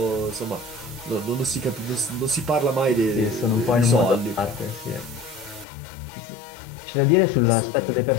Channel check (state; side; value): drops out; right; at 5.7 s